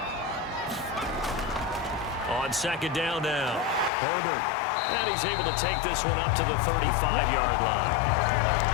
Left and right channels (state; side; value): drops out; right; at 3.9 s